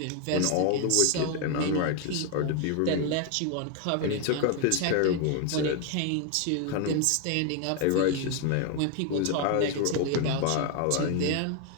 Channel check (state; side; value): different; both; correlation 0.01